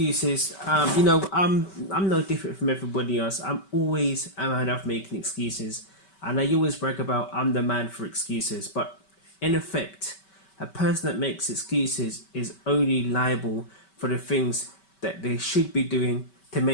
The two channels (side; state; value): right; late; 5.2 ms